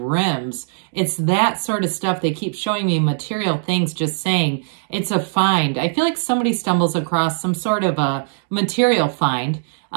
It's that sort of stuff. They keep showing me material things, just saying it's a find. I feel like somebody stumbles across some sort of a material find.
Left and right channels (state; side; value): silent; left; digital silence